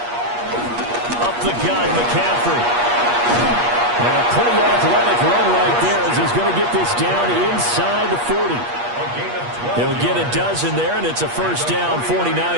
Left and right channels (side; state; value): left; late; 8.4 ms